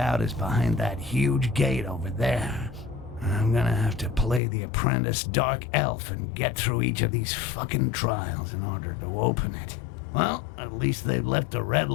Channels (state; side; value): drops out; right; at 4.4 s